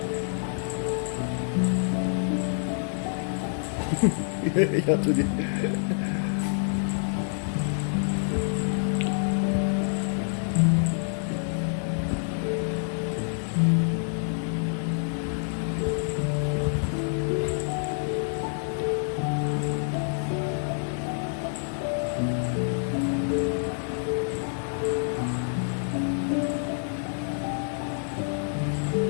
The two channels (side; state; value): right; silent; digital silence